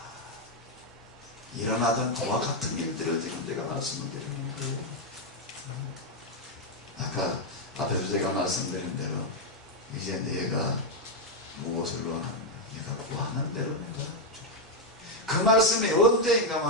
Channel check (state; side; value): normal; both; correlation 0.02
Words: 일어나던 그와 같은 일들을 지금 제가 말씀을 드리는 거예요. 아까 앞에서 제가 말씀드린 대로 이제 내가 무엇을 원하는가? 내가 구하는 대로 내가 그 말씀이